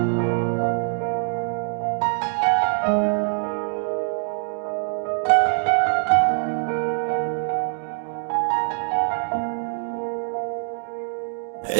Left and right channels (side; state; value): left; silent; digital silence